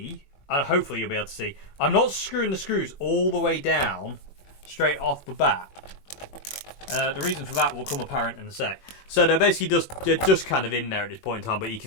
and hopefully you'll be able to see, I'm not screwing the screws all the way down straight off the bat. The reason for that will come apparent in a sec. So they're basically just kind of in there at this point in time, but you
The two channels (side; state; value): right; late; 21 ms